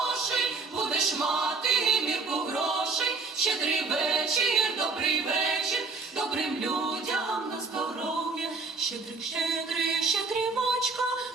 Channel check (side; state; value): left; quieter; 4.0 dB